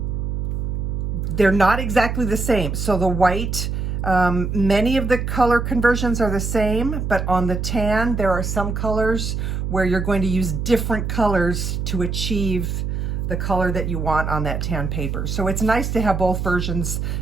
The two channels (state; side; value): noise; right; hum, 2 dB below the sound